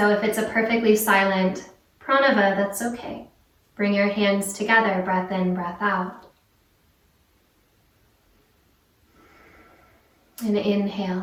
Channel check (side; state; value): both; identical; correlation 1.00